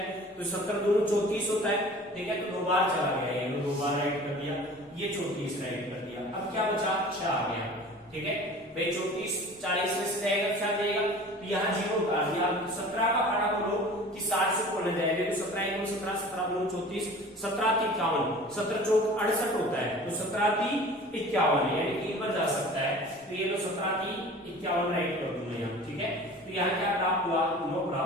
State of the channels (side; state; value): both; normal; correlation 0.42